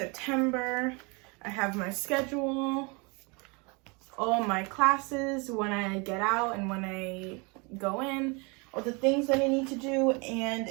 I have my schedule, all my classes, when I get out and when I go in, all the things that I need to do, and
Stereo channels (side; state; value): left; quieter; 30.1 dB